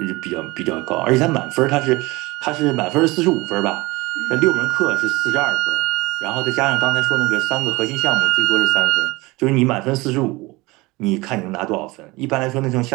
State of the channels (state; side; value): quieter; left; 22.3 dB